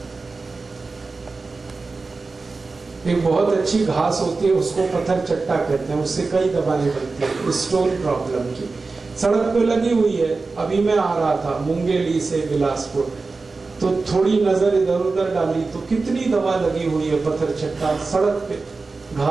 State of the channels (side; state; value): left; quieter; 3.9 dB